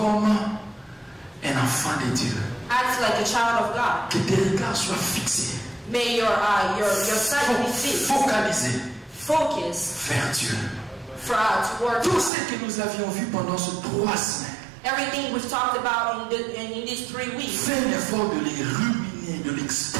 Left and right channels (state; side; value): drops out; left; at 12.3 s